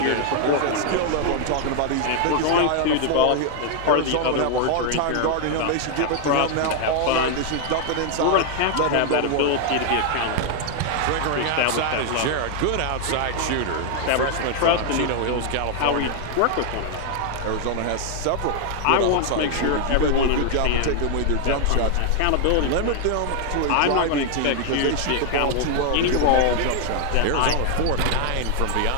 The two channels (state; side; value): different; both; correlation 0.00